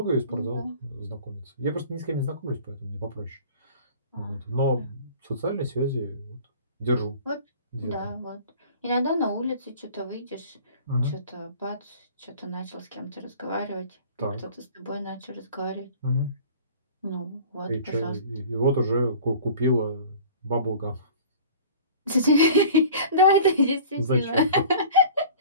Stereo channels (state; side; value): inverted; both; correlation -0.44